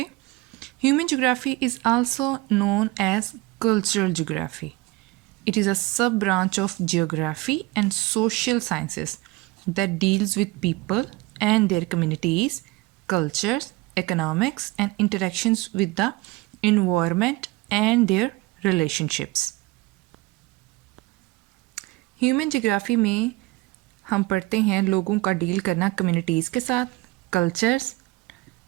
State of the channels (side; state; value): left; quieter; 21.0 dB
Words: Human geography is also known as cultural geography. It is a sub branch of geography and social sciences that deals with people and their communities, cultures, economics, and interactions with the environment and their relationships. Human geography में हम पढ़ते हैं लोगों का deal करना communities के साथ, cultures,